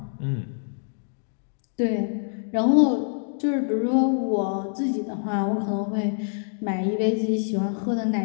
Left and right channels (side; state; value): right; silent; digital silence